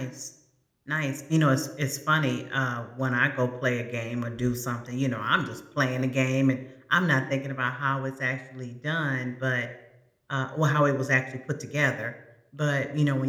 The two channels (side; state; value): both; identical; correlation 1.00